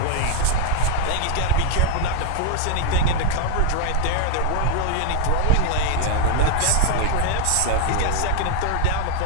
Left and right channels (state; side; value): different; both; correlation 0.00